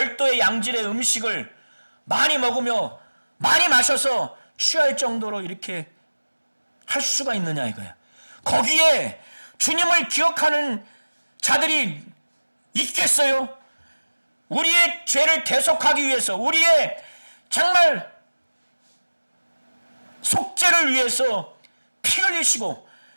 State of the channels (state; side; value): inverted; both; correlation -1.00